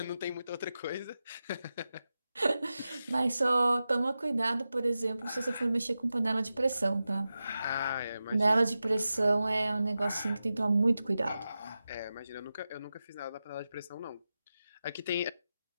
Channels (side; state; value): both; inverted; correlation -0.93